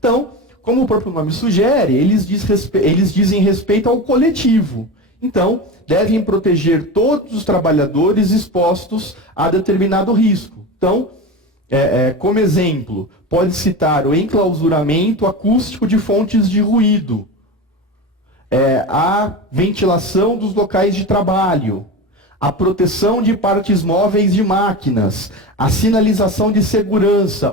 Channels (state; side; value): normal; both; correlation 0.25